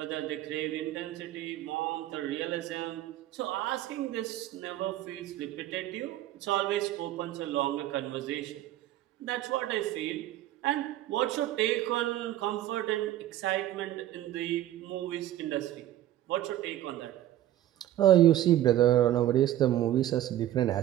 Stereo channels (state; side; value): quieter; left; 13.3 dB